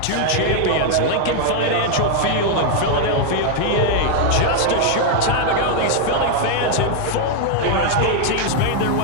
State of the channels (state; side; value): different; both; correlation 0.00